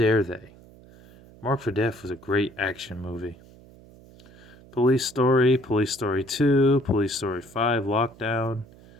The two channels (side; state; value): right; noise; hum, 23 dB below the sound